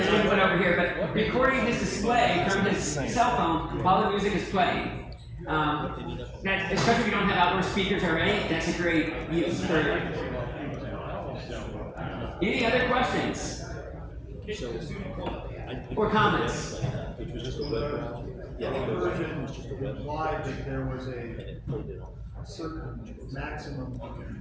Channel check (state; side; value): identical; both; correlation 1.00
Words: input over here, but recording his display from his cell phone while the music is playing. Especially if you don't have outdoor speakers already, that's a great use for it. Any other questions? Or comments? Which was just a web browser. Yeah, the version implied that there was a certain maximum